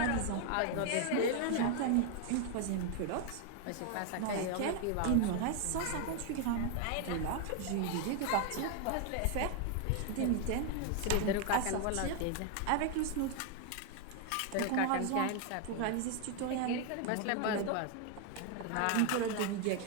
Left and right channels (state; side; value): different; both; correlation 0.00